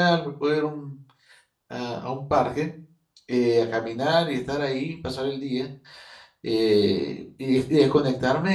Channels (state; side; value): identical; both; correlation 1.00